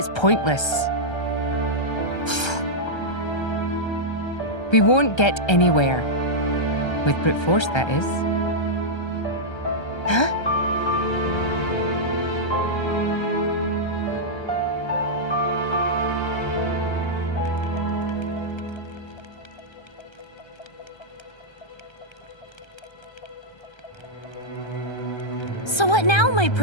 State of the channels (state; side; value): late; right; 1.3 ms